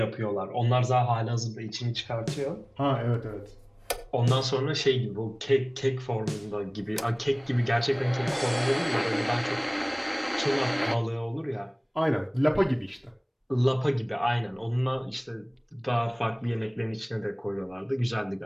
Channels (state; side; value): identical; both; correlation 1.00